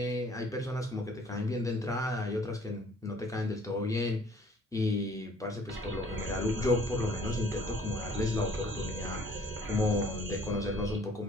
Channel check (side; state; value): both; normal; correlation 0.57